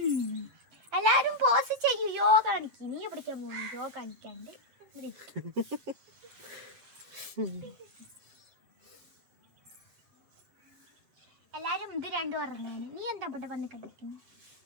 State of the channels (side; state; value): left; late; 7.9 ms